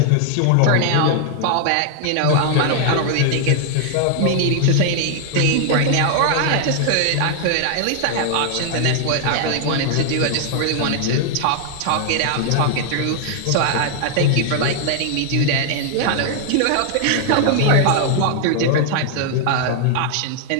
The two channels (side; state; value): both; different; correlation 0.00